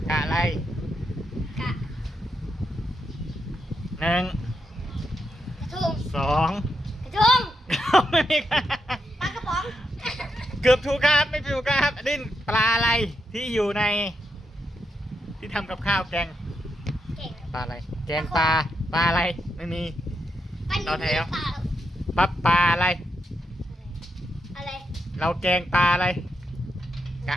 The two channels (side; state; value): both; normal; correlation 0.83